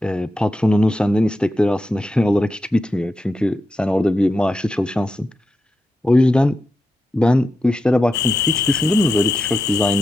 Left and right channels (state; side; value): normal; both; correlation 0.88